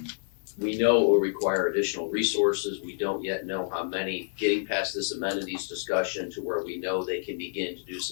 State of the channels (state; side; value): silent; right; digital silence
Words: We know it will require additional resources. We don't yet know how many. Getting past this amenities discussion to where we know they can begin to do